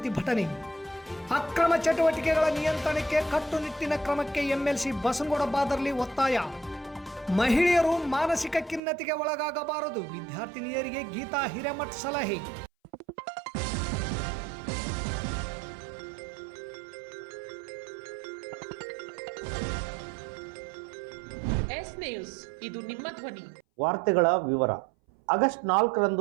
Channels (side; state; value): left; drops out; at 8.8 s